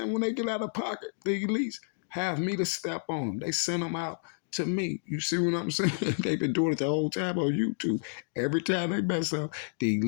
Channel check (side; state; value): right; silent; digital silence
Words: When they get out of pocket, the elites have me to step on them. They send them out to me. You see what I'm saying? They've been doing it the whole time on YouTube. Every time they mess up, the